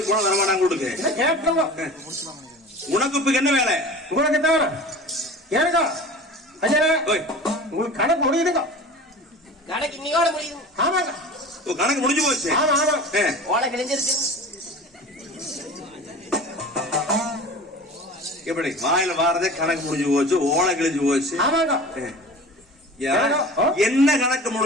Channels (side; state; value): both; normal; correlation 0.38